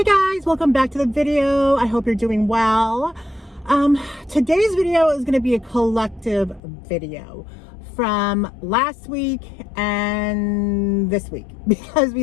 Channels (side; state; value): right; drops out; at 6.6 s